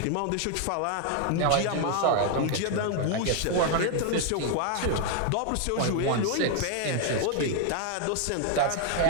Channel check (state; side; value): different; both; correlation 0.00